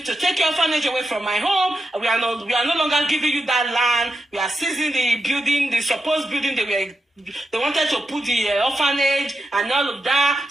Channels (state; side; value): normal; both; correlation 0.87